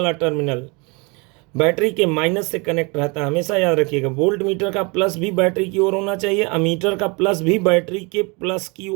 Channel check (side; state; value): left; quieter; 29.4 dB